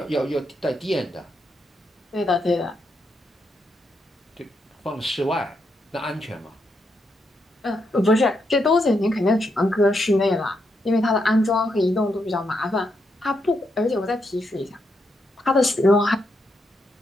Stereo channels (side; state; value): both; normal; correlation 0.81